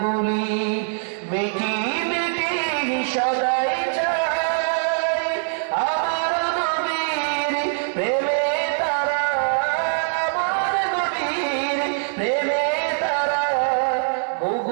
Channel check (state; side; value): silent; left; digital silence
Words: বলি মিটি মিটি সদাই চাই, আমার নবীর প্রেমে তারা, আমার নবীর প্রেমে তারা